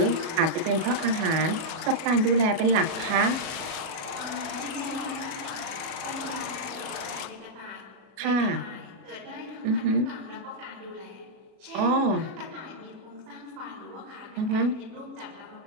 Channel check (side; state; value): left; late; 36 ms